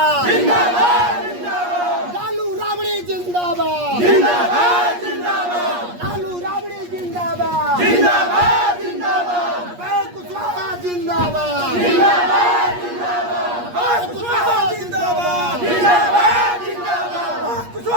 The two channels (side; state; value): left; late; 8.4 ms